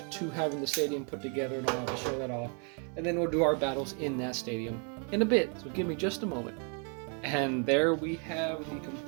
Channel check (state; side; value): quieter; left; 39.1 dB